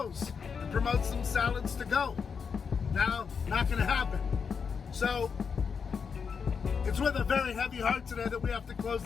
and promote some salads to go? Now, not going to happen. So, it's with a very heavy heart today that we have to close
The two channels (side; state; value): right; quieter; 6.1 dB